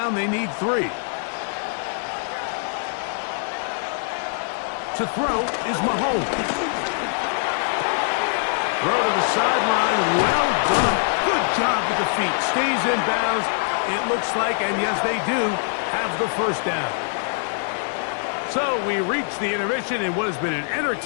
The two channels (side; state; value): right; silent; digital silence